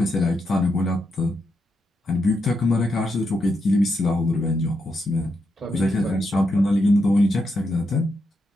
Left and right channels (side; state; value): both; normal; correlation 0.83